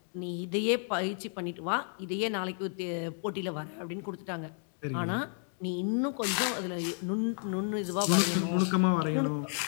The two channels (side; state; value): right; silent; 57 dB below the other